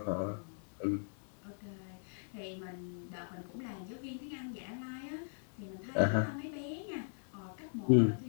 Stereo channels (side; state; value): right; silent; digital silence